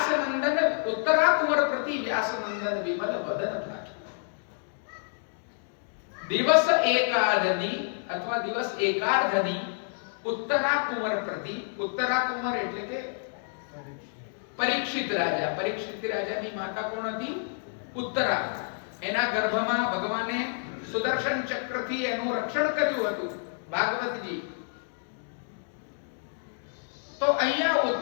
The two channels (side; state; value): right; silent; digital silence